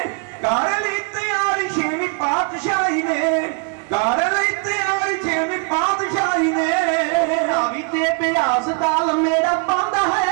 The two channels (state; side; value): quieter; left; 34.5 dB